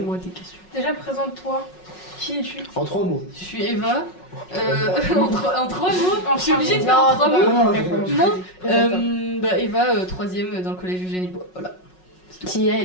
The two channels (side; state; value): right; late; 5.4 ms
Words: des questions. Déjà, présente-toi. Qui es-tu? En 3 mots. Je suis Eva. En trois mots. Je suis obligée de faire Non, en trois c'est mots. pas- Non. Eva, troisième dans le collège Eugénie Bois. Voilà. Qui est